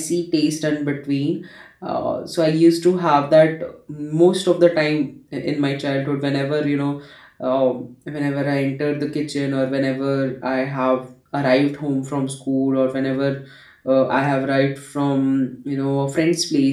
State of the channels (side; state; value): both; identical; correlation 1.00